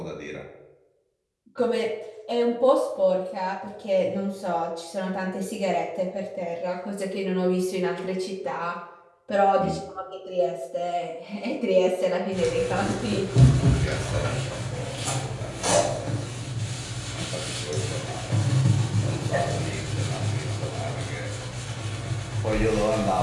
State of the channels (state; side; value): identical; both; correlation 1.00